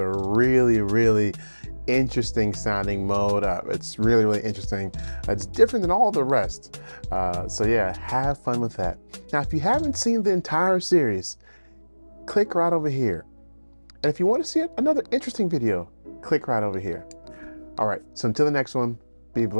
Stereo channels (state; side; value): inverted; both; correlation -1.00